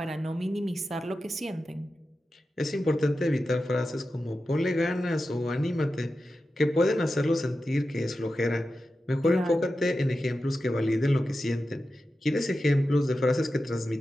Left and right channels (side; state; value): both; normal; correlation 0.92